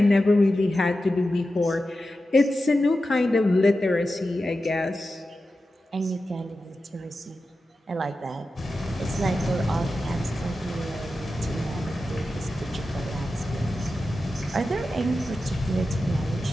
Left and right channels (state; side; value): normal; both; correlation 0.92